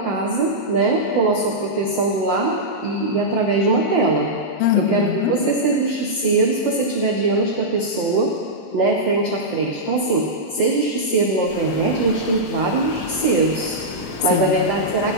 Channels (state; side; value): late; right; 21 ms